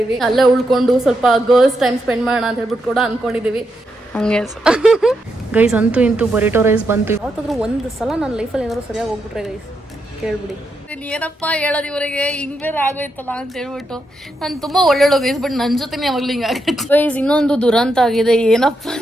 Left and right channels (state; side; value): normal; both; correlation 0.83